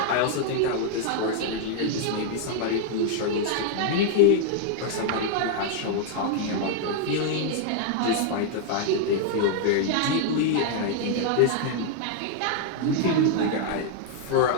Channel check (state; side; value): different; both; correlation 0.00